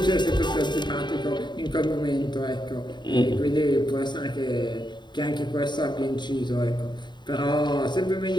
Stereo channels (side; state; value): right; late; 0.22 ms